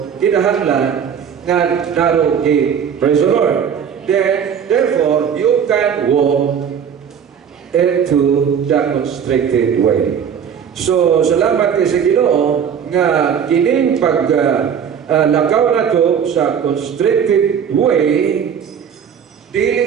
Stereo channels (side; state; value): left; quieter; 7.8 dB